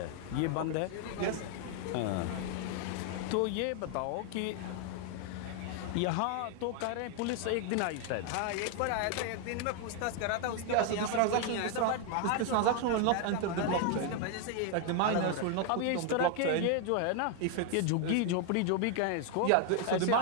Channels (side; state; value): both; different; correlation 0.00